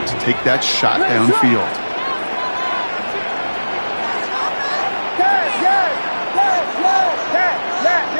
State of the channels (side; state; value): both; inverted; correlation -1.00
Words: take that shot downfield.